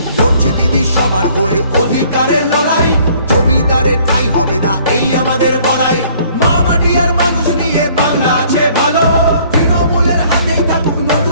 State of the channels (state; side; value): inverted; both; correlation -0.58